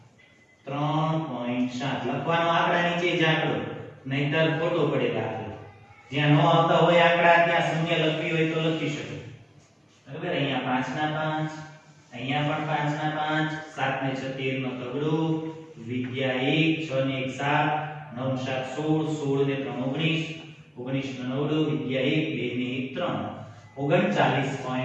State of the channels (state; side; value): identical; both; correlation 1.00